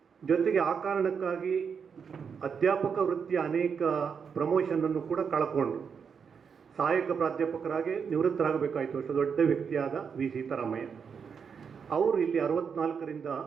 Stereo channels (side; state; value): left; quieter; 6.5 dB